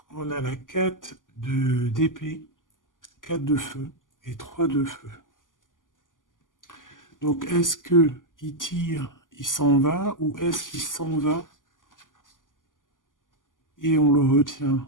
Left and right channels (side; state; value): right; late; 0.88 ms